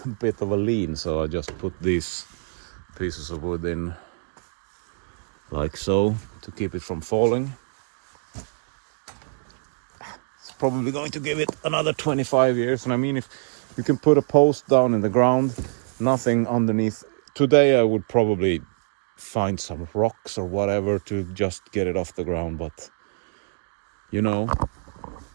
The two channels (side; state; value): left; silent; digital silence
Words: bit of a lean, so I just put these pieces of wood in like so to keep it from falling. It's probably going to give it another 25 years, and I mean, if you can put a post down in the ground, nothing underneath. Today I would probably find some rocks or whatever to just get it off the ground, but you know,